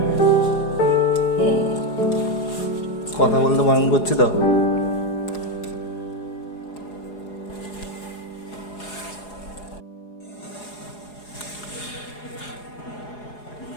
কথা বলতে বারণ করছি তো।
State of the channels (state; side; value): late; right; 4.8 ms